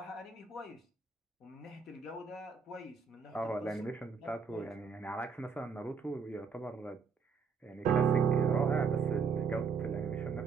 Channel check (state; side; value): quieter; left; 5.7 dB